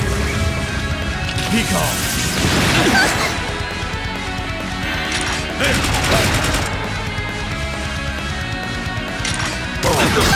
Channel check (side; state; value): both; identical; correlation 1.00